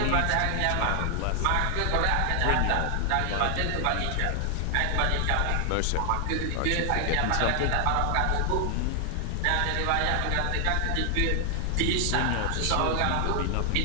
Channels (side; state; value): both; different; correlation 0.00